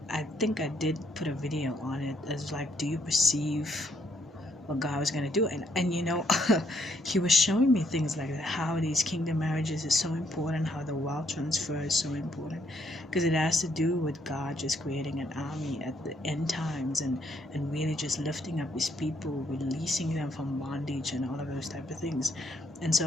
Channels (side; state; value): both; normal; correlation 0.71